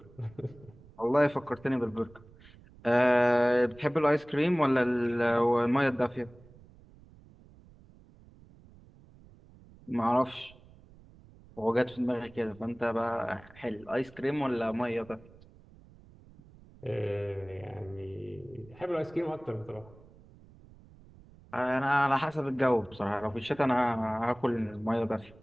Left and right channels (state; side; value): noise; right; rumble, 24 dB below the sound